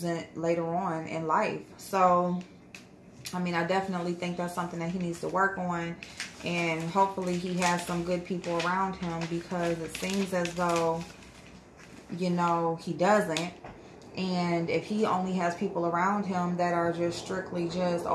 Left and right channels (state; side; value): identical; both; correlation 1.00